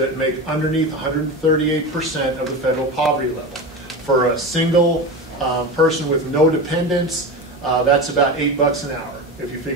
make underneath 138% of the federal poverty level. For a single person with no dependents, that's about $8 an hour. If you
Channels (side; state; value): both; normal; correlation 0.24